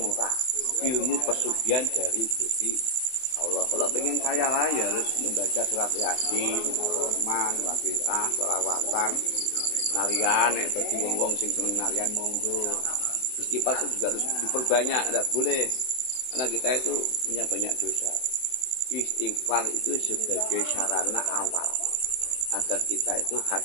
orang ilmu pesugihan dari Gusti Allah. Kalau pengen kaya raya harus membaca surat Yasin, Rahman, Waqiah, selawatan, narian, bagi wong-wong sing seneng narian monggo. Istighfar itu juga harus diperbanyak, tidak boleh karena kita itu punya banyak dosa. Istighfar itu sebagai sarana awal agar kita itu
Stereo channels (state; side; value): late; right; 24 ms